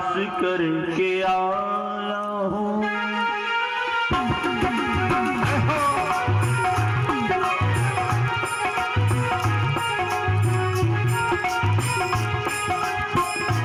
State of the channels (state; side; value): identical; both; correlation 1.00